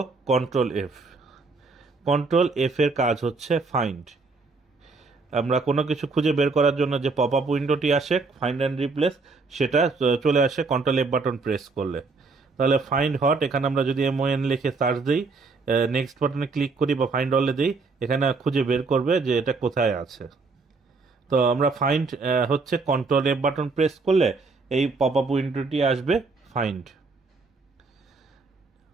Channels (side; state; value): left; quieter; 4.1 dB